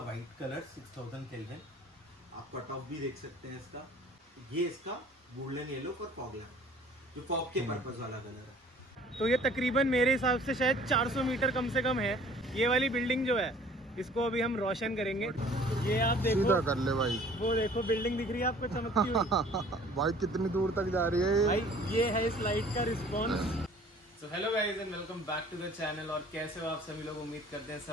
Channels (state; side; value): normal; both; correlation 0.52